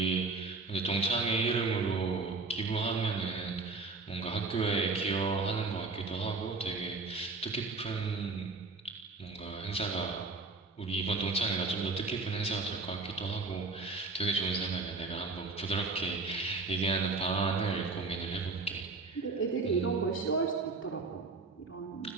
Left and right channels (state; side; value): quieter; left; 3.9 dB